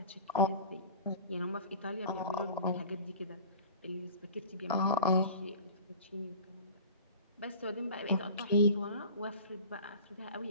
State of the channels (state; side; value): inverted; both; correlation -0.40